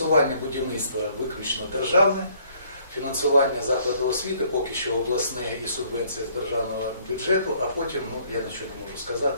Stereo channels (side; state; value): both; inverted; correlation -0.63